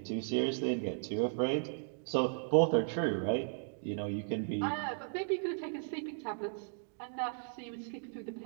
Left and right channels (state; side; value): silent; left; digital silence